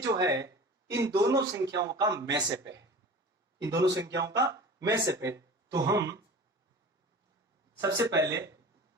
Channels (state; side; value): normal; both; correlation 0.38